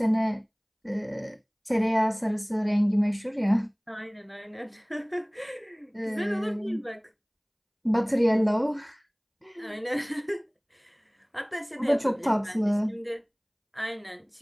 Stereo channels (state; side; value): identical; both; correlation 1.00